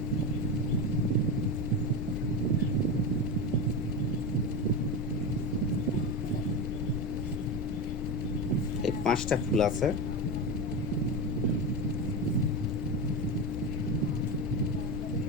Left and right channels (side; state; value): left; noise; rumble, 3 dB below the sound